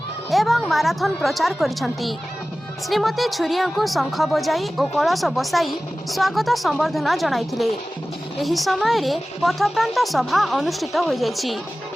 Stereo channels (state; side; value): normal; both; correlation 0.97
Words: एवं माराथन प्रचार करिसेंती। श्रीमती छुरिया को शंख बजाई और कलश बसाई स्वागत संबर्धना जणाइथिले। एही समय रे पथप्रांत सभा अनुष्ठित हो जाइछि।